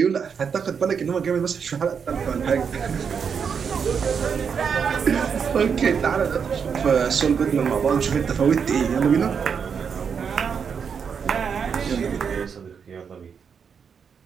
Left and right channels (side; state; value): left; quieter; 6.6 dB